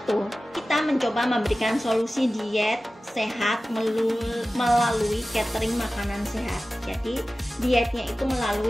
Kita mencoba memberikan solusi diet sehat melalui catering makanan sehat. Jadi dietnya itu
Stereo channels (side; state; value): both; normal; correlation 0.96